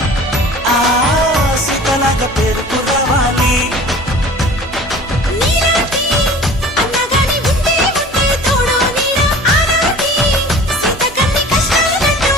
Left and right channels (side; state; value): both; normal; correlation 0.44